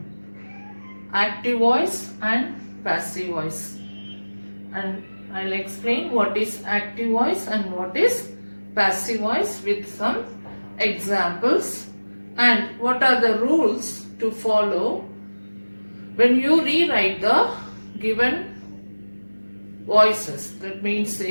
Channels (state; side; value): inverted; both; correlation -1.00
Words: active voice and passive voice. And I'll explain what is active voice and what is passive voice with some examples and what are the rules to follow when you rewrite the given voices. That means